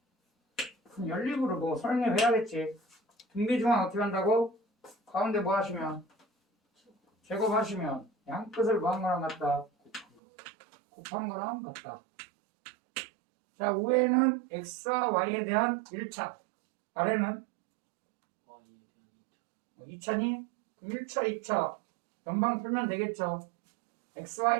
그럼 연립으로 뭐 설명해야겠지. 등비 중앙 어떻게 한다고? 가운데 뭐 하시면? 제곱하시면 양 끝을 뭐한 거랑 같다? 곱한 거랑 같다. 자, 위에는 x와 y에 대한 1차, 아래는 2차니? 1차, 2차 연방 풀면 되겠죠. x,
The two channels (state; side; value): drops out; left; at 10.2 s